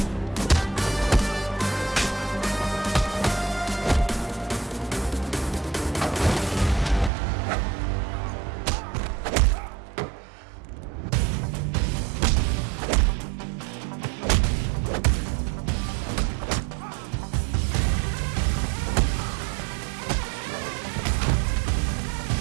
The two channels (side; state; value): left; drops out; at 7.1 s